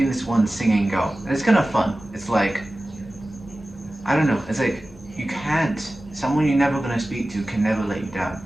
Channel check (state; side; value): normal; both; correlation 0.96